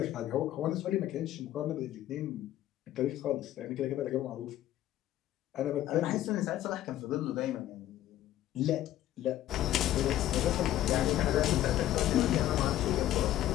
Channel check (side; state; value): right; quieter; 13.3 dB